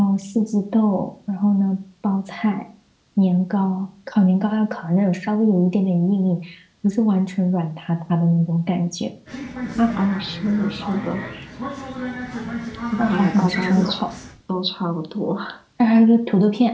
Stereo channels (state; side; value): identical; both; correlation 1.00